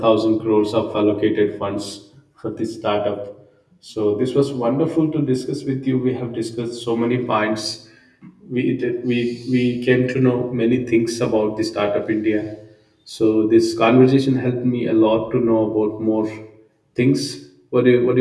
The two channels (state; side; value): identical; both; correlation 1.00